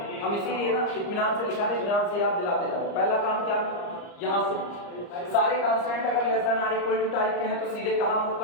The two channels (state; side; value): late; right; 34 ms